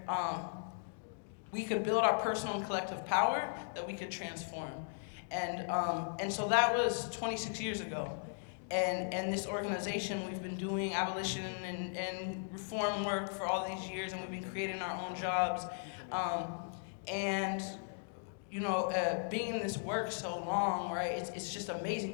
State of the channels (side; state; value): right; silent; digital silence